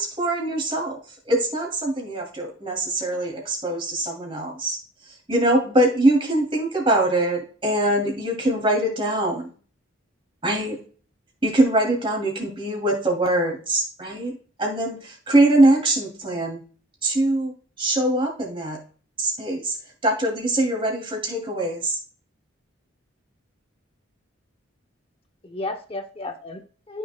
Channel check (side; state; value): both; normal; correlation 0.45